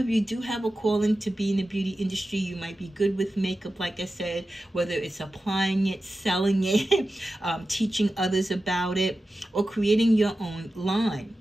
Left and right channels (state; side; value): normal; both; correlation 0.93